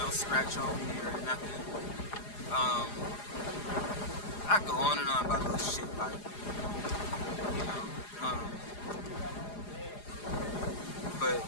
scratch on me or nothing. I go on and on about little shit like, you know, but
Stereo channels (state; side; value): late; right; 4.9 ms